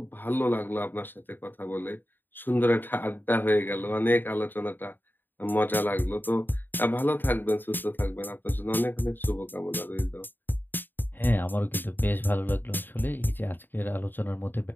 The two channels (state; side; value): late; right; 0.093 ms